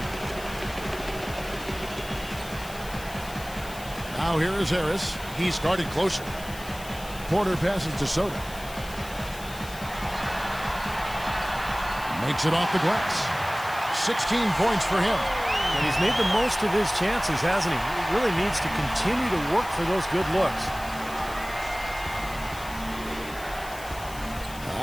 Now here is Harris. He started closer. Porter passes to Soto. Makes it off the glass. 16 points for him. And he's made the most of his chances, hasn't he? He really needs to continue to work for those good looks.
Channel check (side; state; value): left; noise; hiss, 16 dB below the sound